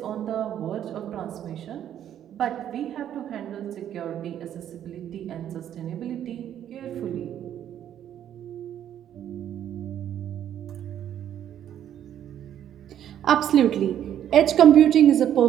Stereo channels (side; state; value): left; quieter; 10.4 dB